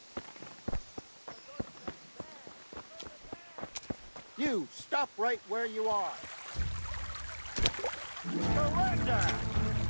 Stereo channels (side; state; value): both; inverted; correlation -1.00